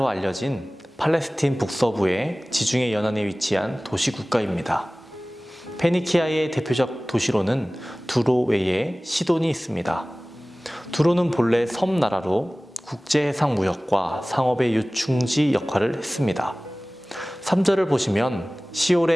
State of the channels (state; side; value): normal; both; correlation 0.98